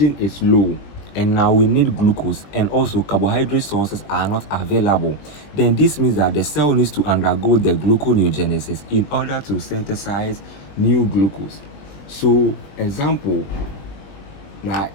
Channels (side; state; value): right; late; 20 ms